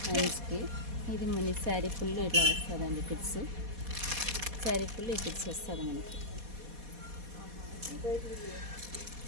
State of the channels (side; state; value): left; late; 4.2 ms